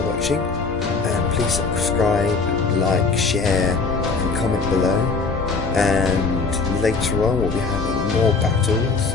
watching, and please subscribe, like, share, and comment below. And later on we'll be having more battles.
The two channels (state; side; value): quieter; right; 4.4 dB